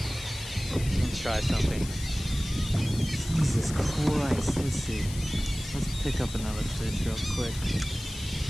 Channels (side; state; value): left; noise; hiss, 12 dB below the sound